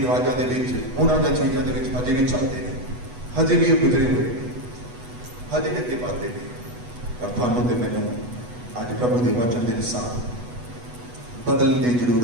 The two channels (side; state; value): left; late; 8.1 ms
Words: ਰਿਵਾਜਾਂ ਦੇ ਵਿੱਚ, ਉਹਨਾਂ ਦਾ ਚੀਜ਼ਾਂ ਦੇ ਵਿੱਚ ਹਜੇ ਵੀ ਚੱਲਦੇ ਨੇ, ਹਜੇ ਵੀ ਉਹ ਗੁਜ਼ਰੇ ਹੋਏ ਨੇ, ਹਜੇ ਵੀ ਅੱਗੇ ਵਧਦੇ ਨੇ। ਪਰ ਤੁਹਾਨੂੰ ਤੇ ਮੈਨੂੰ ਅੱਜ ਪ੍ਰਭੂ ਦੇ ਵਚਨ ਦੇ ਅਨੁਸਾਰ ਬਦਲਣ ਦੀ